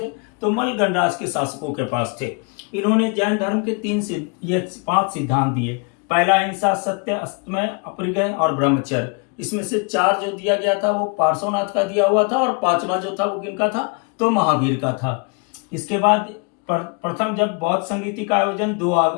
तो मल गणराज के शासकों के पास थे। इन्होंने जैन धर्म के 5 सिद्धांत दिए। पहला हिंसा, सत्य, अस्तमय, अपरिग्रह और ब्रह्मचर्य। इसमें से 4 जो दिया गया था वो पार्श्वनाथ का दिया हुआ था, और 5वां जो था वो किनका था? तो महावीर का था। इसके बाद प्रथम जब बौद्ध संगीति का आयोजन 2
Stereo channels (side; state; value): right; quieter; 34.3 dB